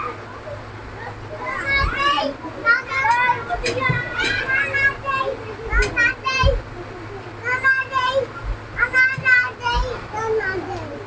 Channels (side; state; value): both; identical; correlation 1.00